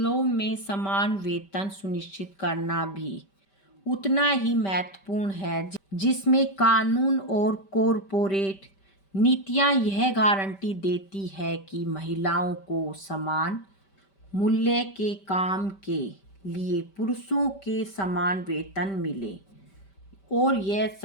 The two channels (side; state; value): right; late; 5.1 ms